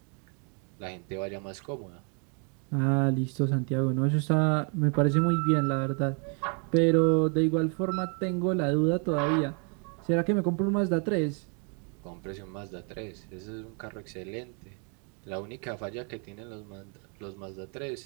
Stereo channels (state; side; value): quieter; left; 39.0 dB